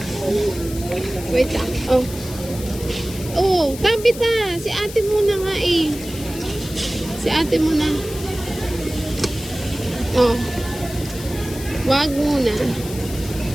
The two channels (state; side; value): noise; left; hiss, 13 dB below the sound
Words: Wait lang. Oh. Oh, Tabita. Si ate muna nga eh. Si ate muna. Oh. Wag muna.